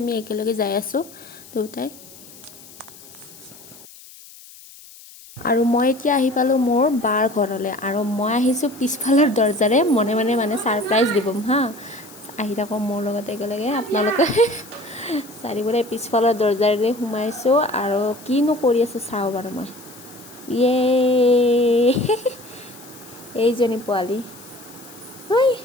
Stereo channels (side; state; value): left; noise; hiss, 20 dB below the sound